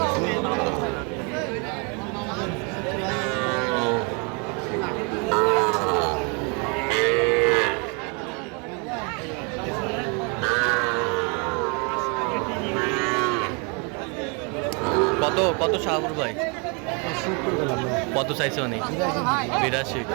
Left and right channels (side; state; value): left; quieter; 33.9 dB